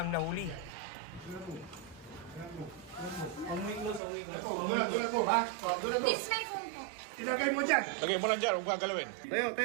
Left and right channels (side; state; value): left; drops out; at 4.0 s